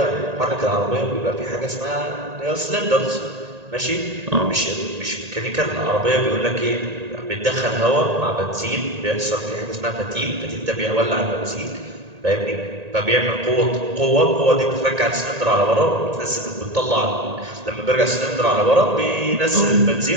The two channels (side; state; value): left; late; 1.8 ms